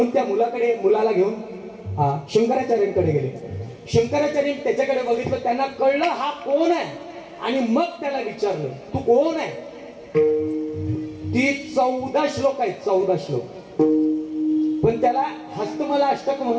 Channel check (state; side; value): identical; both; correlation 1.00